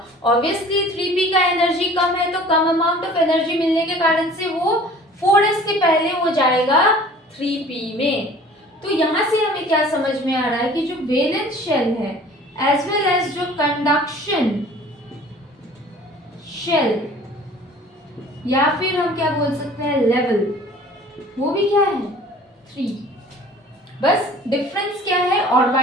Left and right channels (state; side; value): normal; both; correlation 0.48